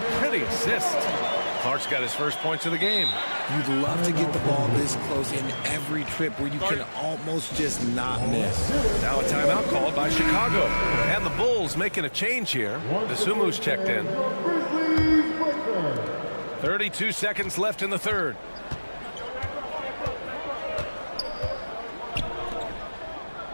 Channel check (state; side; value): inverted; both; correlation -1.00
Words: pretty assist. Clark's got his first points of the game. You'd love to get the ball this close in every trip where you can almost just not miss. Now a timeout called by Chicago. And the Bulls making a change here. Desumu's checked in. 32 seconds left in the third.